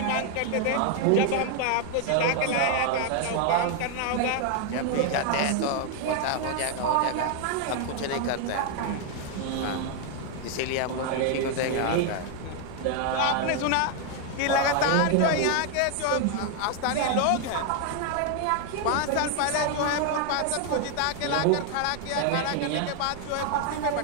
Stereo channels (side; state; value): both; different; correlation 0.00